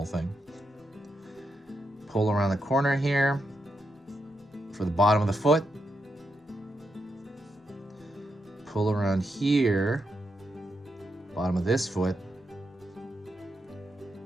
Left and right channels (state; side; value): normal; both; correlation 0.83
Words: thing. Pull around the corner here for the bottom of the foot. Pull around here. Bottom of this foot.